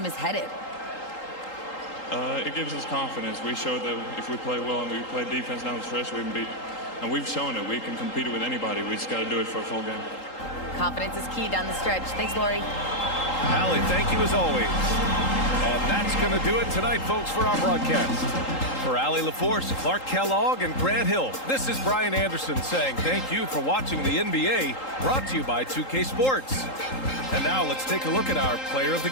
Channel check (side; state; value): right; late; 3.8 ms